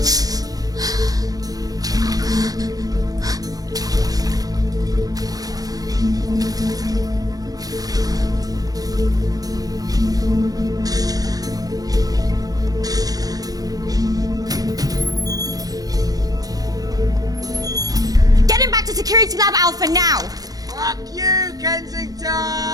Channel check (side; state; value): left; late; 0.18 ms